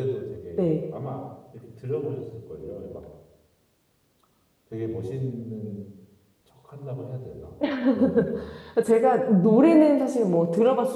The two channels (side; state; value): both; identical; correlation 1.00